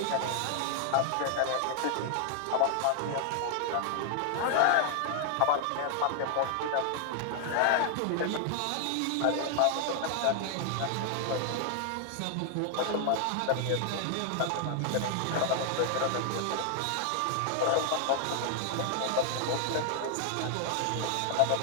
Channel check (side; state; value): both; different; correlation 0.00